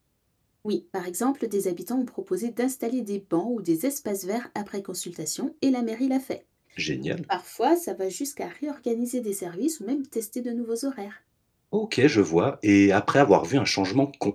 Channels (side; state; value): both; identical; correlation 1.00